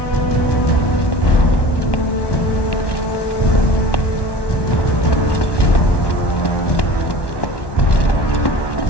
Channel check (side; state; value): right; late; 1.1 ms